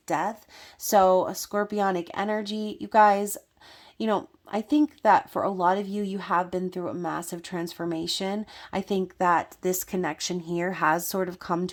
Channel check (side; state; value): both; identical; correlation 1.00